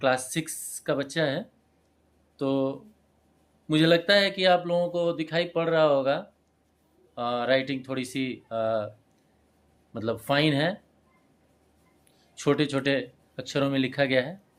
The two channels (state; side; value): identical; both; correlation 1.00